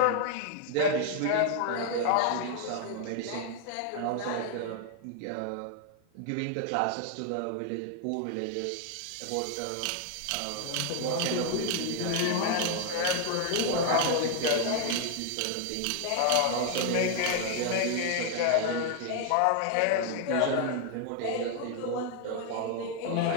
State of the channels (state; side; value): different; both; correlation 0.00